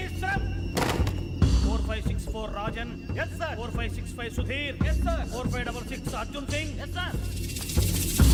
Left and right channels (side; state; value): both; identical; correlation 1.00